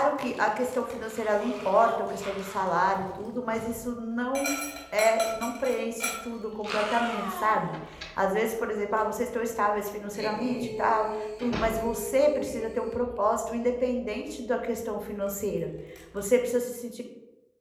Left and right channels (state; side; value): identical; both; correlation 1.00